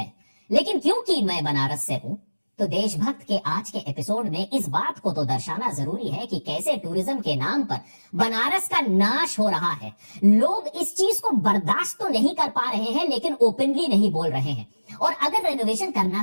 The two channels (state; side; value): inverted; both; correlation -1.00